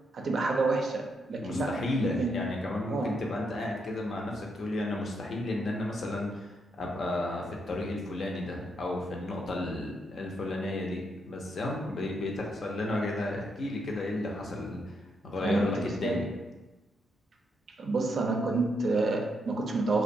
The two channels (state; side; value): normal; both; correlation 0.79